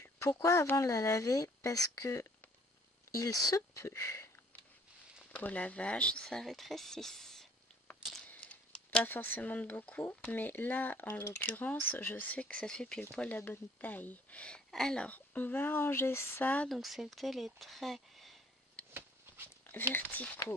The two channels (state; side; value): normal; both; correlation 0.57